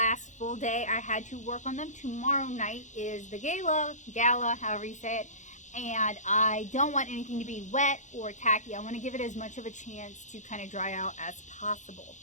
full day I had to work on them. Tomorrow night is the Gala, however you say it, and I don't want anything to be wet or tacky. I want to give it as much of a chance to kind of dry out as possible.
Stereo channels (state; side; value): late; right; 0.35 ms